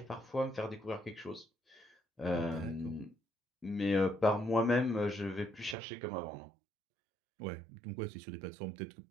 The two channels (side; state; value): left; drops out; at 5.8 s